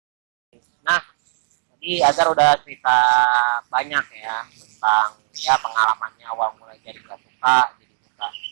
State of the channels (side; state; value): left; silent; digital silence